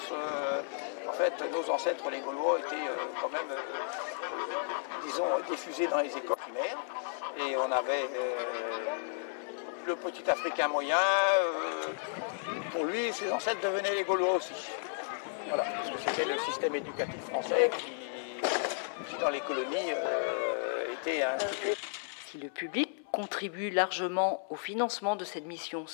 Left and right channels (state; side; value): silent; right; 56 dB below the other